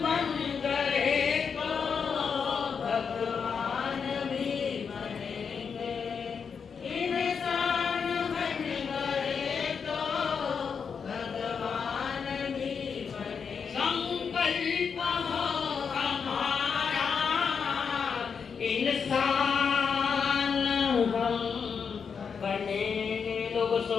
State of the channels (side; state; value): right; quieter; 6.2 dB